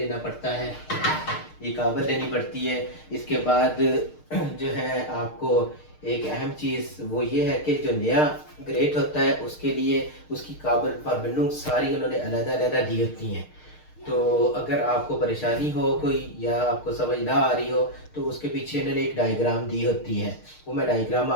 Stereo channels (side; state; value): right; late; 6.5 ms